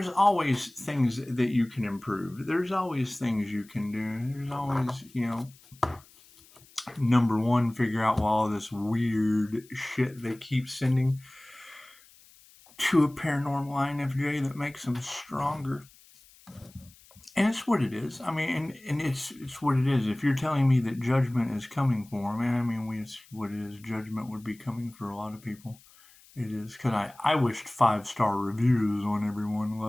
always things that you can improve. There's always things you can do. There's always, number one, figure out all this weird shit they keep sending to a paranormal INFJ that makes them stronger. And it's what it is. I mean, and it's what it is. If you're telling me that judgment is coming for them, I mean, it's what it is. Judgment would be coming for a lot of people. It is, because I wished 5-star reviews on everyone,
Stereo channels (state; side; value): noise; left; hiss, 26 dB below the sound